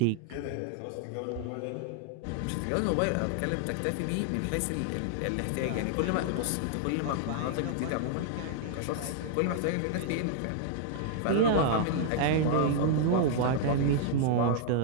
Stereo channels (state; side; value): different; both; correlation -0.01